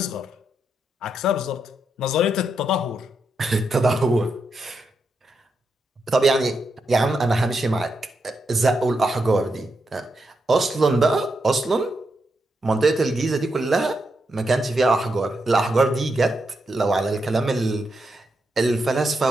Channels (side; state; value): both; normal; correlation 0.83